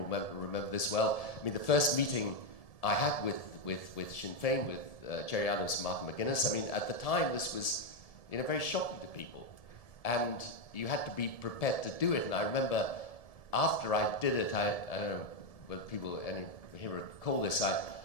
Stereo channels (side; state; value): right; late; 1.7 ms